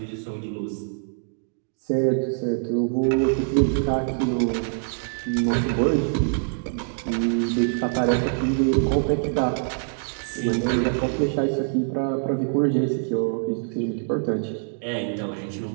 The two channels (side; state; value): left; silent; digital silence